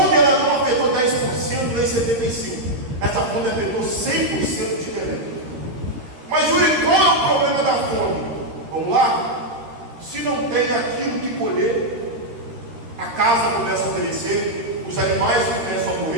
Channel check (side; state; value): left; late; 13 ms